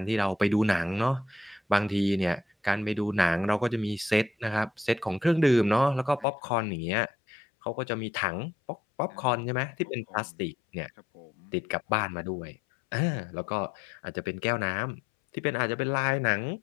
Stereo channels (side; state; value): right; drops out; at 6.2 s